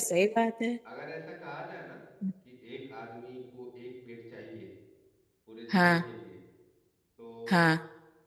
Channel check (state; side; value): identical; both; correlation 1.00